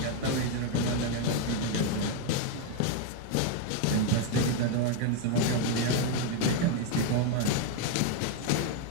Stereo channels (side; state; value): both; different; correlation 0.01